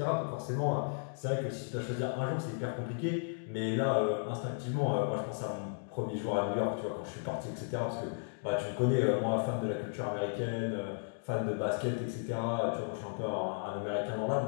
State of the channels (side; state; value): right; silent; digital silence